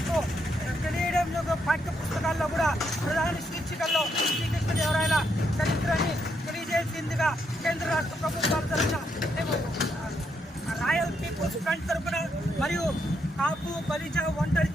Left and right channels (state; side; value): normal; both; correlation 0.77